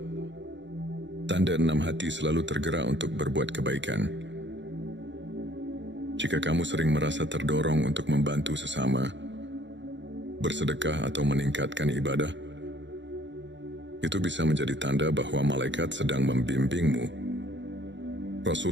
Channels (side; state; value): left; late; 0.53 ms